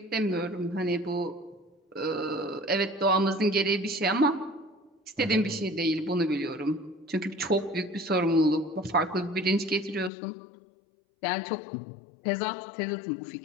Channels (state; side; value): drops out; right; at 10.1 s